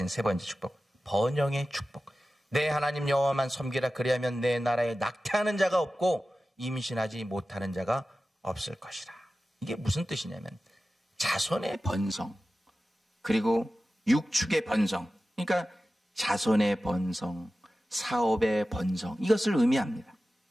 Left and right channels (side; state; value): both; normal; correlation 0.95